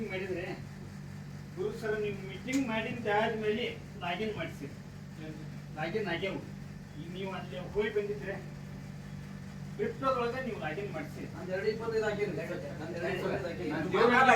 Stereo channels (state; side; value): identical; both; correlation 1.00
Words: ಮಾಡಿದ್ರೆ ಗುರು ಸರ್ ನೀವು ಮೀಟಿಂಗ್ ಮಾಡಿದ ಆದ್ಮೇಲೆ ಲಾಗಿನ್ ಮಾಡಿಸಿ, ಲಾಗಿನ್ ಆಗ್ಯಾವು. ಈಗ ನೀವು ಅಲ್ಲಿ ಹೋಗಿ ಬಂದಿದ್ರೆ ಕ್ರಿಪ್ಟೋದೊಳಗೆ ನೀವು ಲಾಗಿನ್ ಮಾಡಿಸಿ. ನಾನು 225 ಹಾಕಿನಿ.